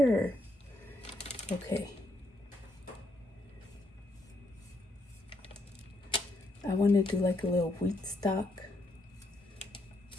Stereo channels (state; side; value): normal; both; correlation 0.76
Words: Okay, I want to do like a little wheat stock